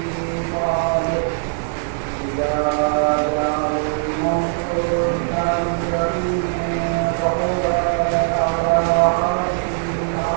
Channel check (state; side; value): silent; left; digital silence